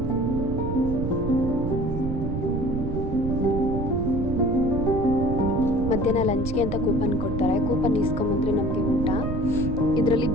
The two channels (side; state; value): right; noise; rumble, 3 dB below the sound